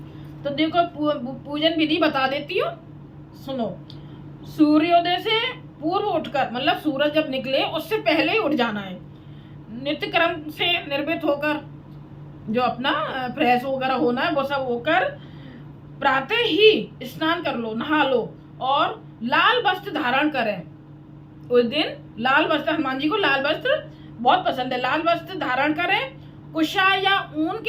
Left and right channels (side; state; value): both; identical; correlation 1.00